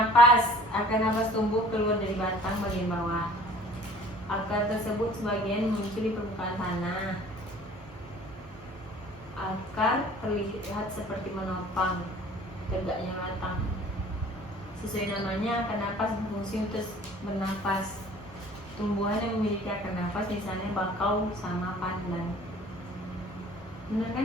napas tumbuh keluar dari batang bagian bawah. Akar tersebut sebagian muncul di permukaan tanah. Akar terlihat seperti menopang tegaknya batang. Sesuai namanya, akar napas berfungsi untuk bernapas. Tumbuhan yang memiliki akar napas misalnya bakau sama pandan. Benar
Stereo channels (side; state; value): both; normal; correlation 0.50